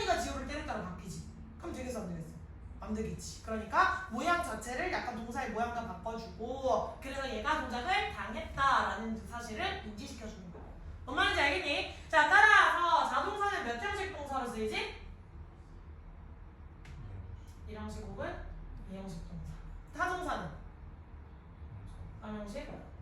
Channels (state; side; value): identical; both; correlation 1.00